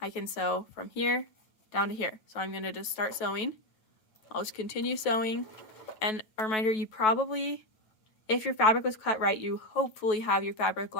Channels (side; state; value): right; late; 9.2 ms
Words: can sew from here down to here. So I'm going to just start sewing. I'll just continue sewing. And a reminder, you probably, if your fabric was cut right, you hopefully have your fabric